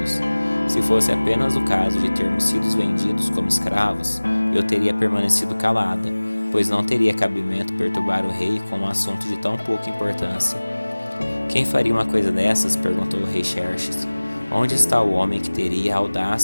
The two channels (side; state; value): both; inverted; correlation -1.00